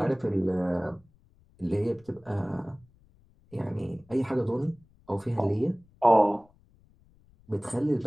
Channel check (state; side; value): noise; left; rumble, 30 dB below the sound